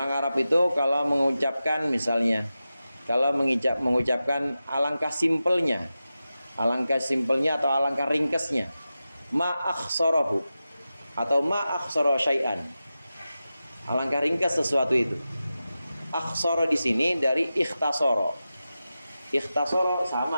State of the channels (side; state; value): both; inverted; correlation -0.93